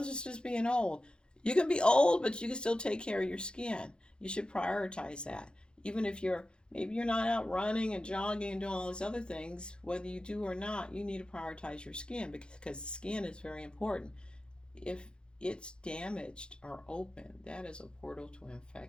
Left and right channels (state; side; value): late; right; 0.051 ms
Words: just being old. You can be old, but you can still take care of your skin. You should prioritize that. Even if maybe you're not out running and jogging and doing all these other things, whether you do or not, you need to prioritize your skin because the skin is very important. If it's damaged or open, that is a portal to